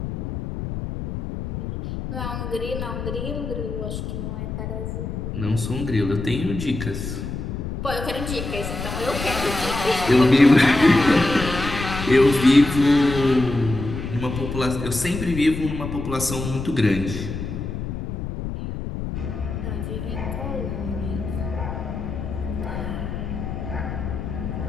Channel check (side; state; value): left; noise; rumble, 6 dB below the sound